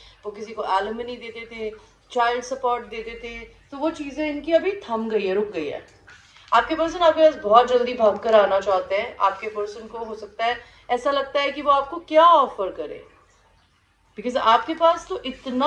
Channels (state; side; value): identical; both; correlation 1.00